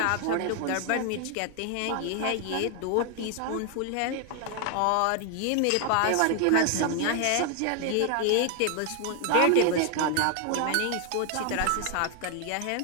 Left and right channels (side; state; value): both; different; correlation 0.00